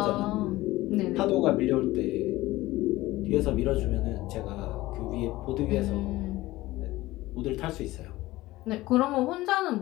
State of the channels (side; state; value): right; quieter; 18.0 dB